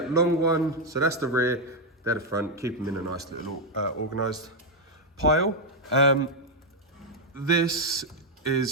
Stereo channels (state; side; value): normal; both; correlation 0.01